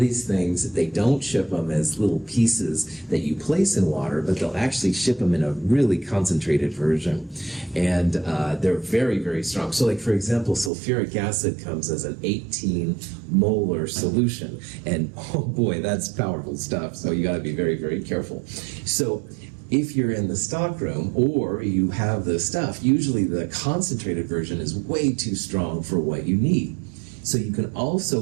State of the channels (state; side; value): drops out; left; at 10.7 s